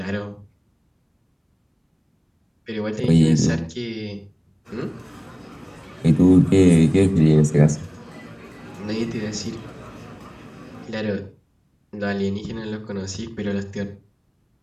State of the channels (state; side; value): identical; both; correlation 1.00